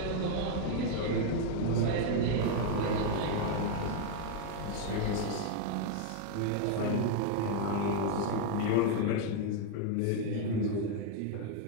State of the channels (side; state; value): both; different; correlation 0.00